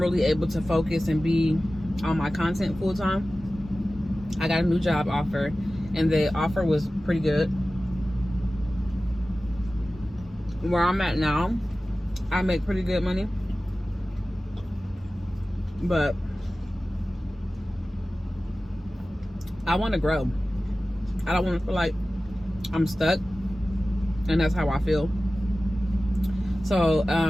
able to focus and be on my content full time. I got a new job offer, and the offer was pretty good. Where I'm at now, I make pretty good money, but I want to grow. I don't want to feel like I'm stuck. and that's how I feel. So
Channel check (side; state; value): both; normal; correlation 0.96